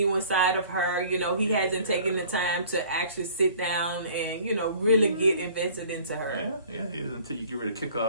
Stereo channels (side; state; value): both; inverted; correlation -0.51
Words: side of her. He hasn't taken the time to actually sit down and really get invested into her. Yeah. Until you get ready to kick her